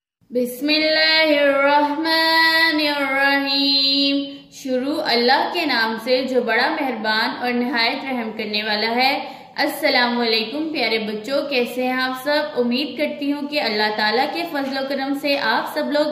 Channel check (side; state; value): both; identical; correlation 1.00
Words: बिस्मिल्लाहिर्रहमानिर्रहीम। शुरू अल्लाह के नाम से जो बड़ा मेहरबान और निहायत रहम करने वाला है। अस्सलाम वालेकुम प्यारे बच्चों, कैसे हैं आप सब। उम्मीद करती हूँ कि अल्लाह ताला के फजल व करम से आप सब लोग